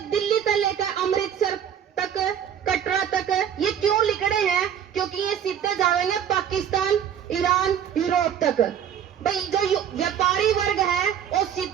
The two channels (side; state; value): left; quieter; 9.0 dB